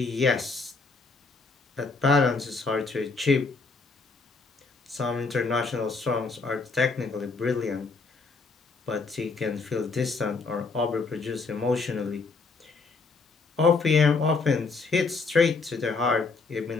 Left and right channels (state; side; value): quieter; right; 4.2 dB